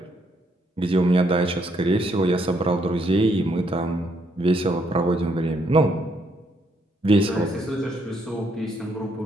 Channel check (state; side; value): normal; both; correlation 0.72